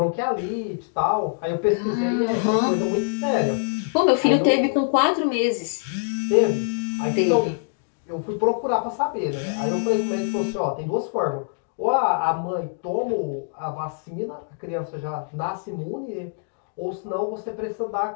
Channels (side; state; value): right; silent; digital silence